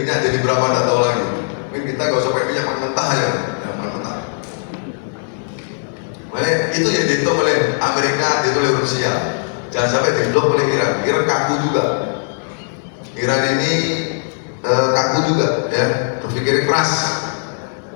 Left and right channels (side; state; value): right; silent; 61 dB below the other